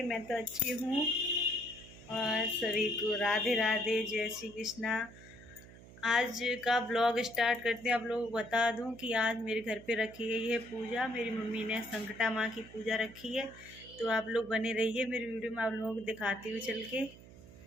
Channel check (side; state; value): right; noise; hum, 19 dB below the sound